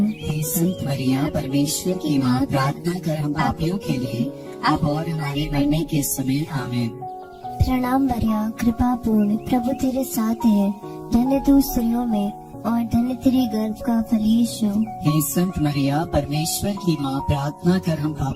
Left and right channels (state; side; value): identical; both; correlation 1.00